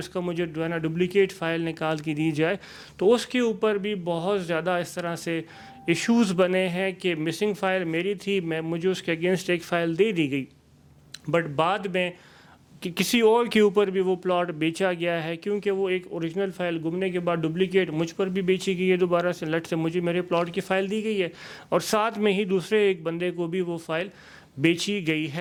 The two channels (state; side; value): identical; both; correlation 1.00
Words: کا مجھے ڈپلیکیٹ فائل نکال کے دی جائے، تو اس کے اوپر بھی بہت زیادہ اس طرح سے ایشوز بنے ہیں کہ مسنگ فائل میری تھی، مجھے اس کے اگینسٹ ایک فائل دے دی گئی، بٹ بعد میں کسی اور کے اوپر بھی وہ پلاٹ بیچا گیا ہے، کیونکہ وہ ایک اوریجنل فائل گمنے کے بعد ڈپلیکیٹ مجھ پر بھی بیچی گئی ہے دوبارہ سے، لٹ سے مجھے میرے پلاٹ کی فائل دی گئی ہے اور ساتھ میں ہی دوسرے ایک بندے کو بھی وہ فائل بیچی گئی